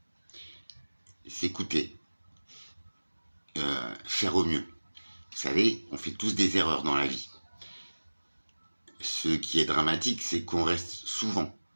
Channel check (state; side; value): inverted; both; correlation -1.00